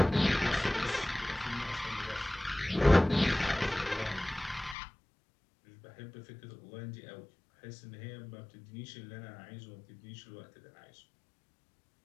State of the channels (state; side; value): drops out; right; at 4.8 s